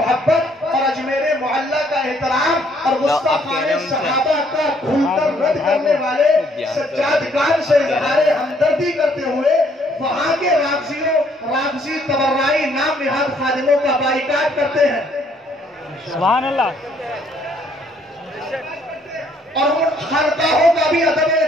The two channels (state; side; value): normal; both; correlation 0.65